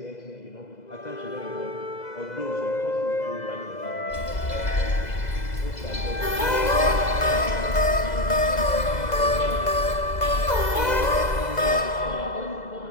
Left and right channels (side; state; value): right; late; 2.0 ms